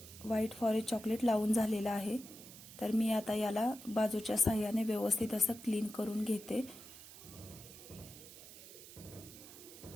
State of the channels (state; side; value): noise; right; hiss, 16 dB below the sound